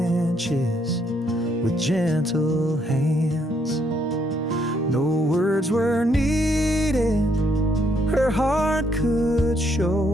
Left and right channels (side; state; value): both; normal; correlation 0.72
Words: with gentle hands. No words were needed, her heart could